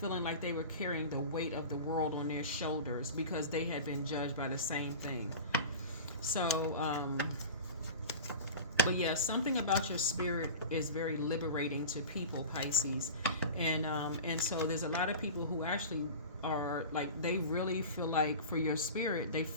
like they were carrying the weight of the world on their shoulders because they had been judged by the same thing. So, but yeah, something about your spirit is very liberating to people, Pisces, and so there's a lot of people who actually are like, they really feel like for your spirit,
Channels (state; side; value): inverted; both; correlation -0.32